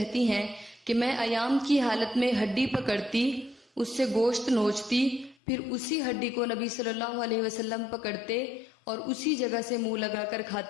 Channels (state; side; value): drops out; right; at 5.4 s